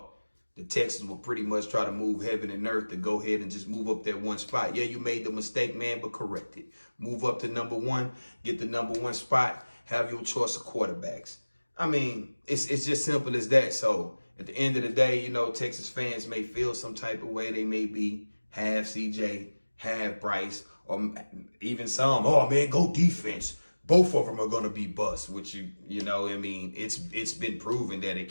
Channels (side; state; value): both; inverted; correlation -1.00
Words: the Texans will pretty much try to move heaven and earth to go ahead and just move up that 1 spot. Yeah, you made the mistake, man, but correct it. Move up to number 1, get the number 1 spot, have your choice of quarterbacks. It's just simple as that. So at the end of the day, Texas fans may feel some type of way. They may be half CJ, half Bryce, or even some, oh man, go defense. Both of them are going to be bust, which it's been proven that it